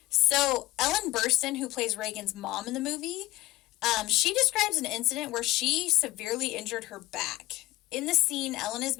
So, Ellen Burstyn, who plays Reagan's mom in the movie, she describes an incident where she severely injured her back. In the scene, Ellen is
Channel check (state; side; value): quieter; right; 17.6 dB